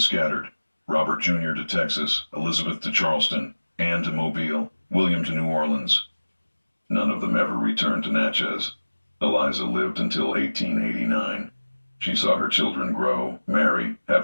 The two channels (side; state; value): both; inverted; correlation -1.00